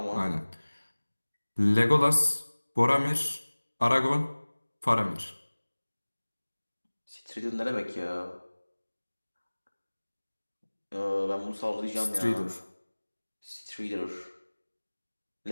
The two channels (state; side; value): inverted; both; correlation -1.00